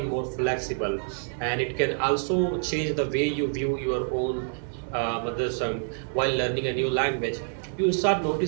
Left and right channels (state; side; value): silent; left; digital silence